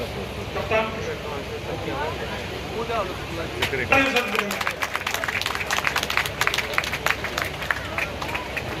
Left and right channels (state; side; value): identical; both; correlation 1.00